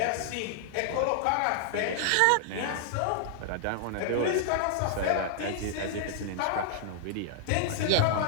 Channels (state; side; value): different; both; correlation 0.00